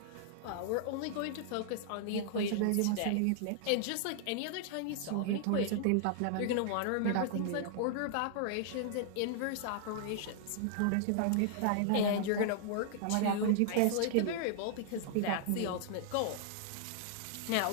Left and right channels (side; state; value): both; different; correlation -0.01